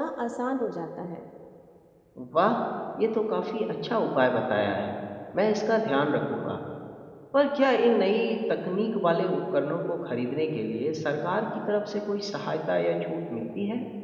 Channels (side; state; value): both; identical; correlation 1.00